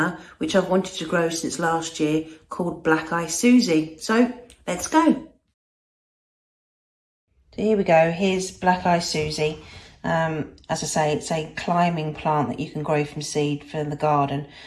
which I've wanted to grow since last year, called Black Eyed Suzie. So let's go. So here we go, here's Black Eyed Suzie. As I say, it's a climbing plant that you can grow from seed for the garden.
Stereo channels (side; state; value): both; identical; correlation 1.00